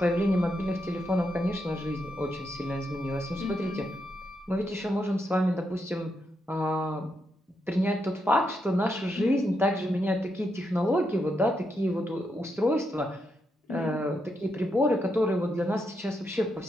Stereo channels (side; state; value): both; normal; correlation 0.82